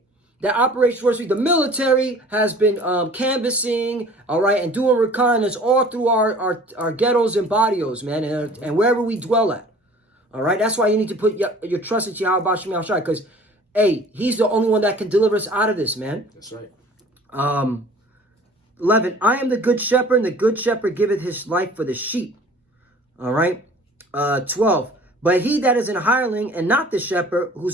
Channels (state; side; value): normal; both; correlation 0.48